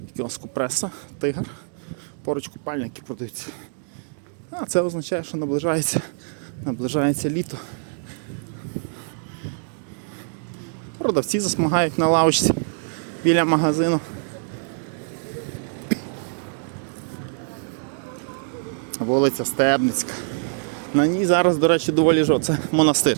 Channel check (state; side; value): silent; left; digital silence